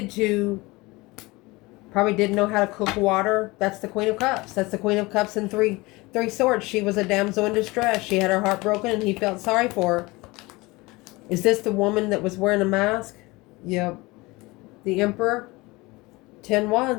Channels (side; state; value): right; quieter; 22.7 dB